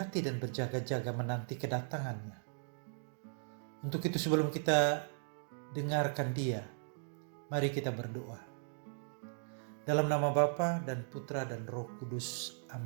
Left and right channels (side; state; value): left; silent; digital silence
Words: dan berjaga-jaga menanti kedatangannya. Untuk itu sebelum kita dengarkan Dia, mari kita berdoa. Dalam nama Bapa dan Putra dan Roh Kudus.